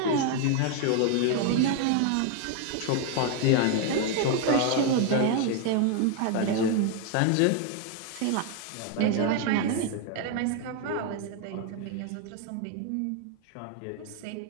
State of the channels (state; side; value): different; both; correlation 0.01